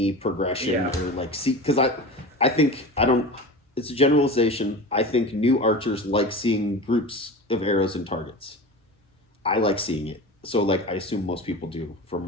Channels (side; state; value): both; normal; correlation 0.31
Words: progression Yeah. or like see, because I think I don't. It's a generalization. I think new archers like seeing groups of arrows and targets. I like seeing it. So like I assume most people do